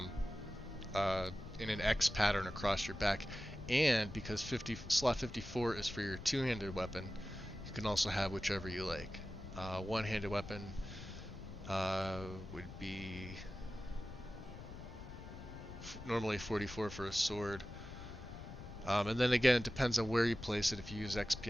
in an X pattern across your back. And because slot 54 is for your two-handed weapon, you can also have whichever you like. One-handed weapon would be normally 44 for a sword. And then again, it depends on where you place it. If you use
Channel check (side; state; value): left; noise; rumble, 12 dB below the sound